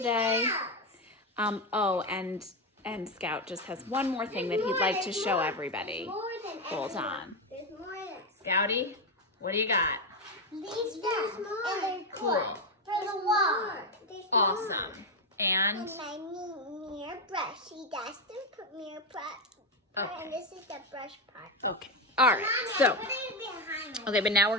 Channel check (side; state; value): both; normal; correlation 0.09